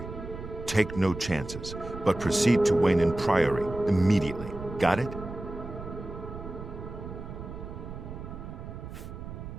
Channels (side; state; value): right; noise; rumble, 10 dB below the sound